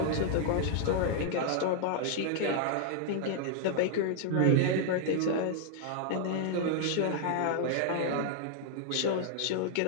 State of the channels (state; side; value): different; both; correlation 0.00